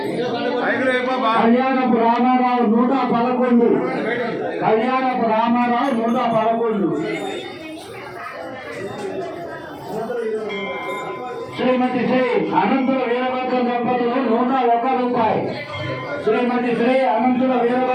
కళ్యాణపు రామారావు 111 కళ్యాణపు రామారావు 111 శ్రీమతి శ్రీ అనంతుల వీరభద్ర దంపతులు 101 రూపాయి. శ్రీమతి శ్రీ అనంతుల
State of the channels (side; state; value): both; identical; correlation 1.00